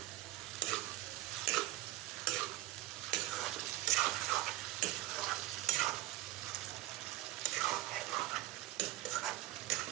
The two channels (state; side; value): quieter; left; 16.6 dB